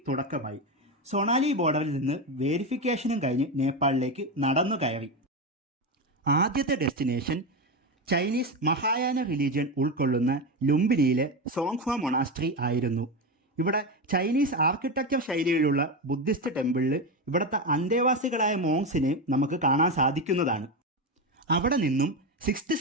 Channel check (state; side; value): normal; both; correlation 0.15